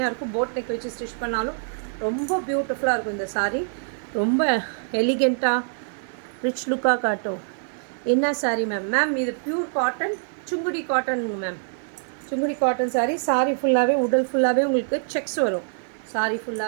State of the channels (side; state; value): left; silent; digital silence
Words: இருக்கும். போட் நெக் வச்சு ஸ்டிச் பண்ணாலும் ரொம்ப பியூட்டிஃபுல்லாக இருக்கும் இந்த சாரீ. ரொம்ப எலிகெண்ட்டாக ரிச் லுக்காக காட்டும். என்ன சாரீ மேம்? மேம் இது பியூர் காட்டன், சுங்குடி காட்டனுங்க மேம். சுங்குடி காட்டன் சாரீ ஃபுல்லாகவே, உடல் ஃபுல்லாகவே உங்களுக்கு செக்ஸ் வரும். சாரீ